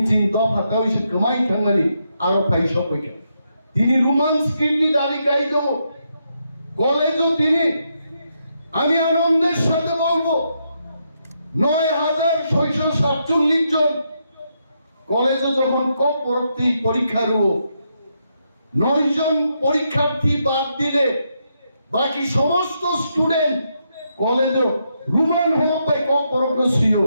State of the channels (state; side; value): inverted; both; correlation -0.80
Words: চিন দফা তালিশ কমাই থাঙ্গানি আরো পাইছো কইতে তিনি রোমান্স কিডনি দাবি কাই দেব কলেজও তিনি আমি আনন্দের সাথে বলবো 9,647 জন কলেজে যখন পরবর্তী পরীক্ষা রুও 9 জন পরীক্ষার্থী বাদ দিলে বাকি সমস্ত স্টুডেন্ট কলেজ রোমান হোক বা কক পরগ্ন ছিল